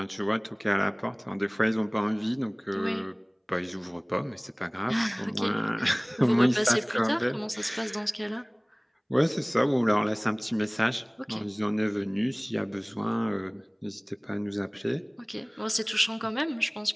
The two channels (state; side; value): identical; both; correlation 1.00